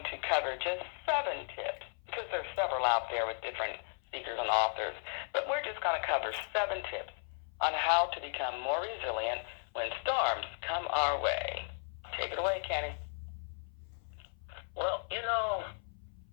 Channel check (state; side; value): silent; right; 54 dB below the other